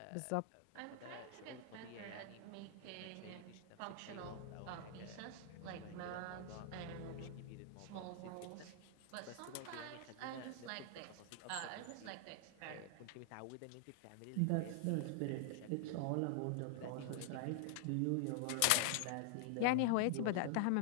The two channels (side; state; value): both; different; correlation -0.01